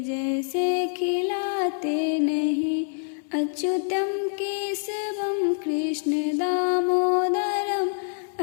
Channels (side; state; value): right; silent; 58 dB below the other